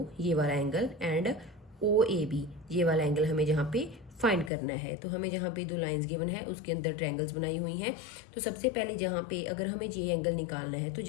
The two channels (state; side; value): drops out; right; at 4.5 s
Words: ये वाला एंगल एंड OAB ये वाला एंगल हमें जहाँ पे फाइंड करना है. तो हमें जहाँ पे दो लाइंस गिवन है उसके अंदर ट्रायंगल्स बनाई हुई हैं. तो सबसे पहले जहाँ पे अगर हमें ये एंगल निकालना है तो